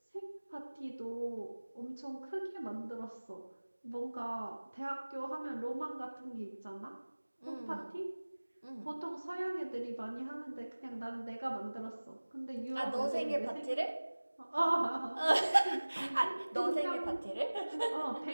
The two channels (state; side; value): inverted; both; correlation -1.00